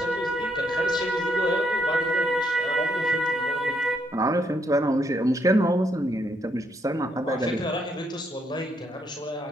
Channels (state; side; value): normal; both; correlation 0.75